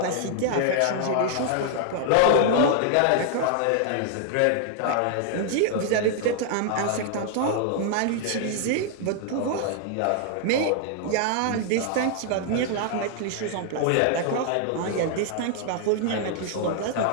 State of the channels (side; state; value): both; different; correlation 0.00